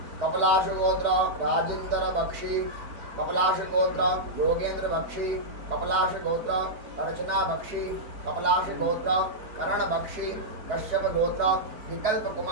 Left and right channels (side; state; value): left; late; 4.3 ms